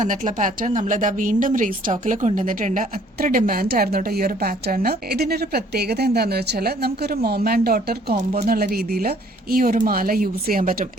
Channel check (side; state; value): both; normal; correlation 0.59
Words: പാറ്റേൺ നമ്മളിതാ വീണ്ടും റീസ്റ്റോക്കിൽ കൊണ്ടുവന്നിട്ടുണ്ട്. അത്ര ഡിമാൻഡ് ആയിരുന്നു കേട്ടോ ഈ ഒരു പാറ്റേണിന്. ഇതിന്റെ ഒരു പ്രത്യേകത എന്താന്ന് വെച്ചാൽ നമുക്കൊരു മോം ആൻഡ് ഡോട്ടർ കോംബോ എന്നുള്ള രീതിയിൽ ഈ ഒരു മാല യൂസ് ചെയ്യാൻ പറ്റും.